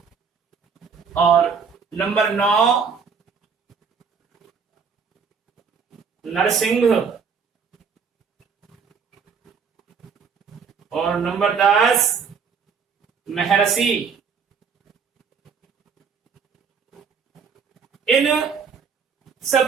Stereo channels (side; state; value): left; quieter; 5.9 dB